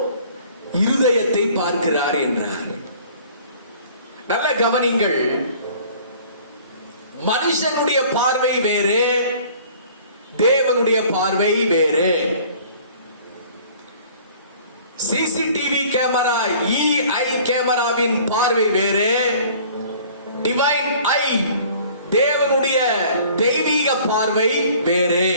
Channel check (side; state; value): both; inverted; correlation -0.51